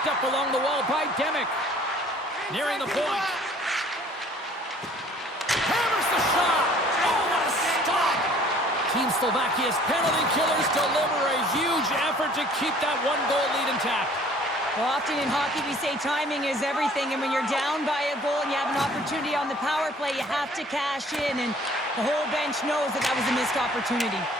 up along the wall by Demick. Nearing the point. Hammers the shot. Oh, what a stop. Team Slovakia's penalty killers deliver a huge effort to keep that one-goal lead intact. Well, often in hockey we say timing is everything, and when you're down by a goal and you have an opportunity on the power play, you have to cash in, and the whole bench knows that that was a missed opportunity.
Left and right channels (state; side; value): normal; both; correlation 0.54